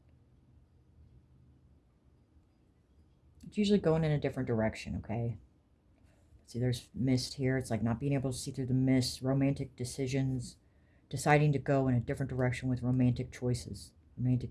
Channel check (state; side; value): identical; both; correlation 1.00